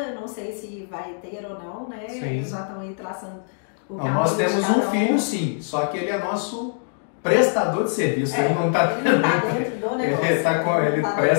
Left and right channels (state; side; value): silent; right; digital silence